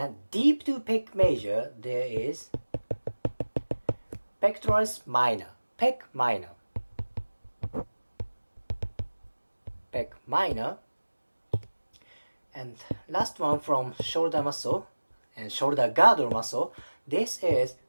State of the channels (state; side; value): inverted; both; correlation -1.00